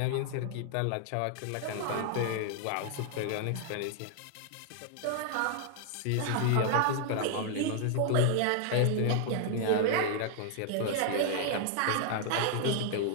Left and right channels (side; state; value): both; different; correlation 0.00